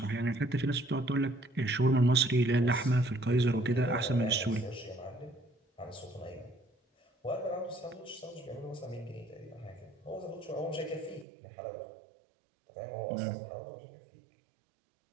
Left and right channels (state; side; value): drops out; left; at 11.2 s